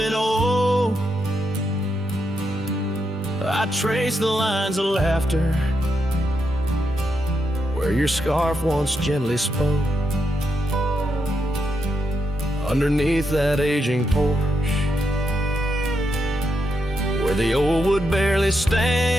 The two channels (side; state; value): both; normal; correlation 0.82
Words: oak, I trace the lines of laughter where your scarf once gently spoke. Underneath that aging porch, where the old wood barely stands,